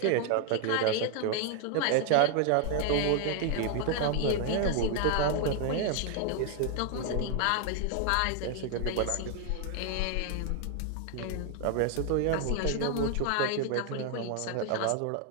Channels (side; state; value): both; different; correlation 0.00